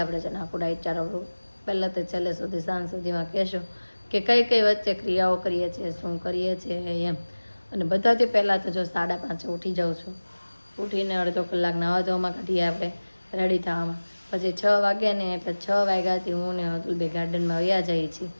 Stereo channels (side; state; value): both; inverted; correlation -1.00